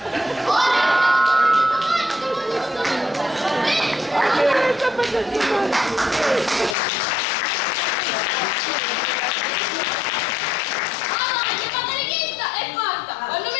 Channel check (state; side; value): drops out; right; at 6.8 s